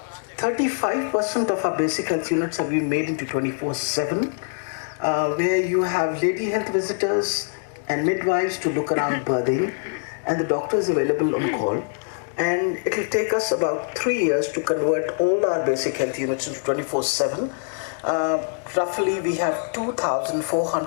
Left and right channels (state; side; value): silent; right; 63 dB below the other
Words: 35% of our basic health units have been made into 24/7, where you have lady health visitors and midwives to look around birthing, and the doctor is available on call. And it will take us about 3 years to convert all our basic health units into 24/7. Roughly we have